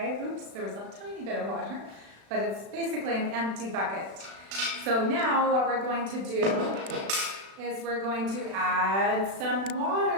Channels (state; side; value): late; left; 36 ms